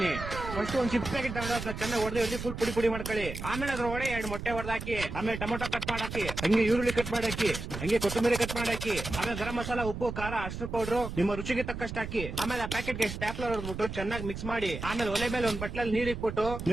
ಫಸ್ಟ್ ಒಂದ್ ಚಿಪ್ಸ್ ಪ್ಯಾಕೆಟ್ ತಗೊಂಡು ಅದನ್ನ ಚೆನ್ನಾಗಿ ಹೊಡೆದು ಫುಲ್ ಪುಡಿ ಮಾಡ್ಕೊಳ್ಳಿ. ಆಮೇಲೆ ಅದ್ರೊಳಗೆ 2 ಮೊಟ್ಟೆ ಹೊಡೆದಾಕಿ, ಆಮೇಲೆ ಟೊಮೊಟೊ ಕಟ್ ಮಾಡಾಕಿ, ಹಂಗೆ ಈರುಳ್ಳಿ ಕಟ್ ಮಾಡಾಕಿ, ಹಂಗೆ ಕೊತ್ತಂಬರಿ ಕಟ್ ಮಾಡಾಕಿ, ಆಮೇಲೆ ಗರಂ ಮಸಾಲ, ಉಪ್ಪು, ಖಾರ, ಅರ್ಶಿನ ಪೌಡರ್ ನಿಮ್ಮ ರುಚಿಗೆ ತಕ್ಕಷ್ಟು ಹಾಕಿ. ಆಮೇಲೆ ಆ ಪ್ಯಾಕೆಟ್ ಗೆ ಸ್ಟ್ಯಾಪ್ಲರ್ ಹೊಡೆದ್ಬಿಟ್ಟು ಚೆನ್ನಾಗಿ ಮಿಕ್ಸ್ ಮಾಡಿ, ಆಮೇಲೆ ಒಲೆ ಮೇಲೆ ಒಂದ್ ಬಟ್ಲಲ್ಲಿ ನೀರ್ ಇಟ್ಬಿಟ್ಟು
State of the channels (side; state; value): right; noise; rumble, 7 dB below the sound